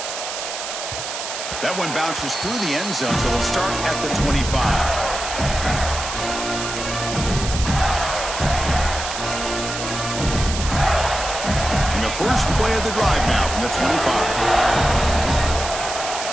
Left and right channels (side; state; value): right; noise; hiss, 6 dB below the sound